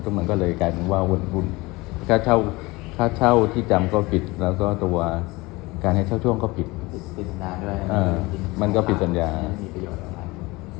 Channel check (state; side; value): quieter; right; 22.5 dB